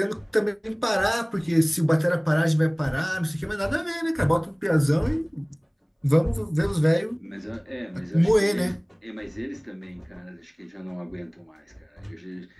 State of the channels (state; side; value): identical; both; correlation 1.00